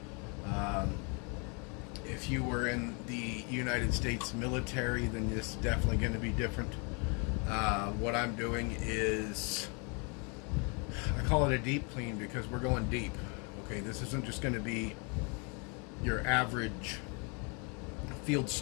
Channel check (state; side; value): quieter; right; 34.5 dB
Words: If you were in the United States military, then this is definitely going to be different. What I'm doing is, I call it a deep clean because we're going deep. Okay, this isn't just going to be your average field